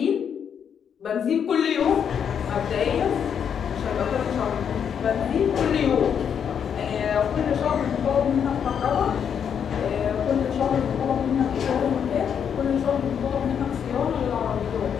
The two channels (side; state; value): right; quieter; 7.9 dB